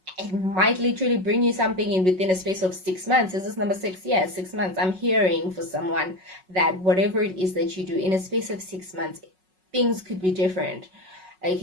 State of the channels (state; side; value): late; left; 5.4 ms